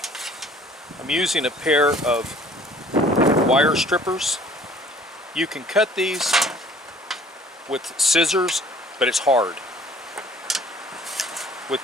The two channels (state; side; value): normal; both; correlation 0.53